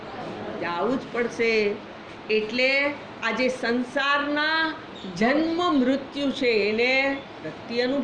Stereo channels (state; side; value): identical; both; correlation 1.00